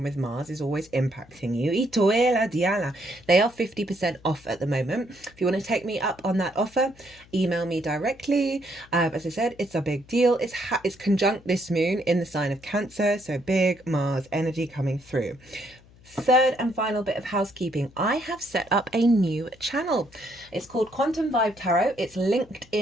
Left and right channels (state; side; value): noise; left; hum, 25 dB below the sound